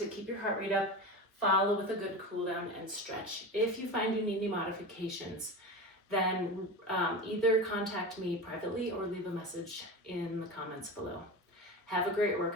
keep your heart rate up. Follow with a good cool down and stretch. If you find you need any modifications, then either contact me privately or leave a message in the comments below. Have a great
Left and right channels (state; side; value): normal; both; correlation 0.26